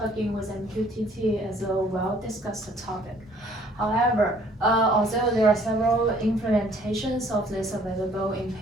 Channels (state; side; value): normal; both; correlation 0.59